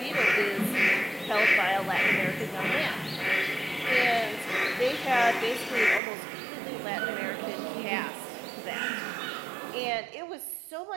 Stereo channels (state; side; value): drops out; left; at 6.0 s